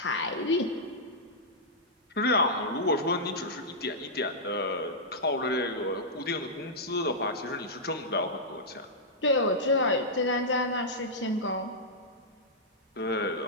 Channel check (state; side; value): normal; both; correlation -0.11